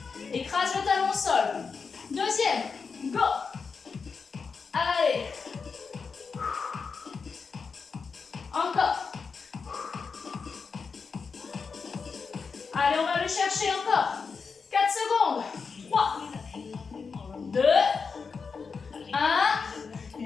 Écrase le talon au sol. Deuxième. Go. Allez. Encore. Allez, on va le chercher encore. 4 secondes. 3, 2,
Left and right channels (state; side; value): quieter; right; 5.2 dB